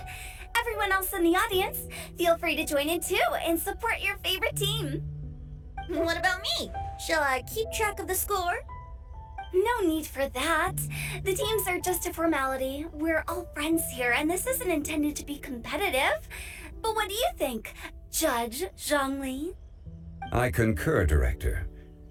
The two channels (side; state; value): both; identical; correlation 1.00